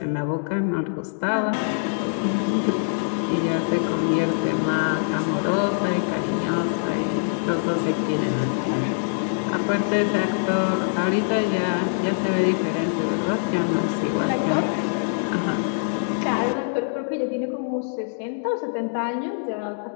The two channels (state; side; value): silent; right; digital silence